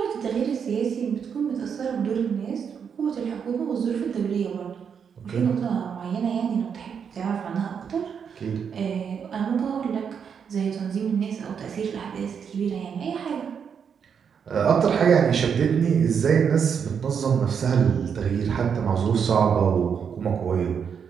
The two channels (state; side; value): quieter; left; 7.1 dB